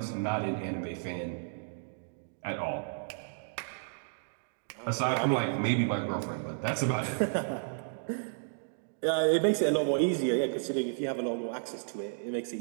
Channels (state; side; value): silent; left; digital silence